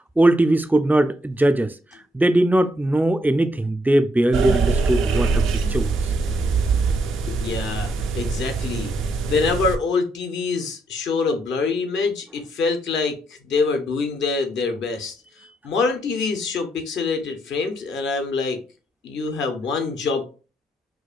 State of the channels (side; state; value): both; normal; correlation 0.76